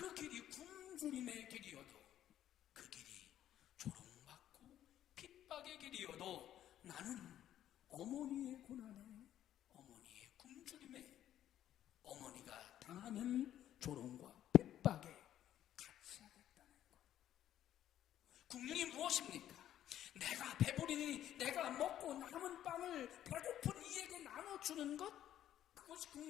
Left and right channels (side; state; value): right; quieter; 11.6 dB